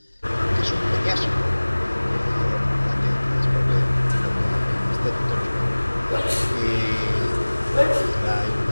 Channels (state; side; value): inverted; both; correlation -1.00